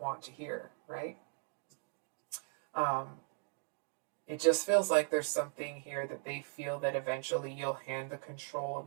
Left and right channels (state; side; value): silent; left; 52 dB below the other